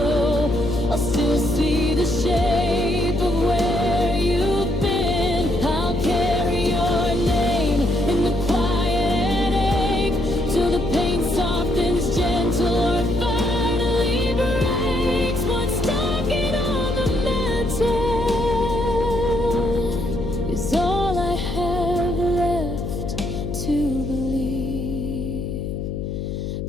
I'll still see the shape of where you've been. I'll carry your name in the quiet and ache till the pain softens gentle or finally breaks. One stocking on the mantle is all I have left to believe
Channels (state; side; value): noise; left; hum, 4 dB below the sound